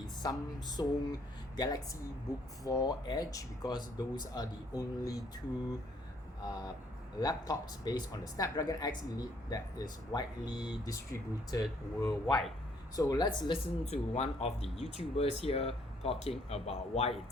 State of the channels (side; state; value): both; normal; correlation 0.66